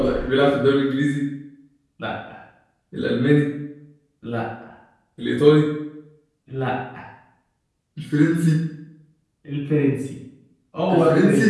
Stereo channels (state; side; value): identical; both; correlation 1.00